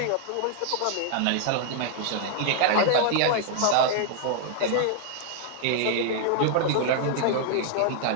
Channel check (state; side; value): different; both; correlation -0.01